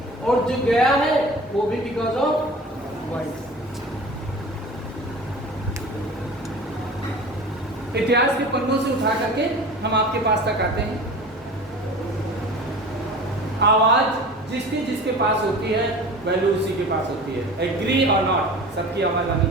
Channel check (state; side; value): normal; both; correlation 0.38